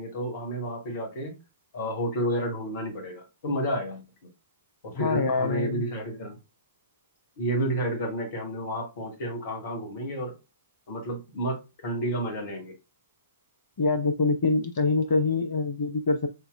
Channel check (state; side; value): inverted; both; correlation -0.47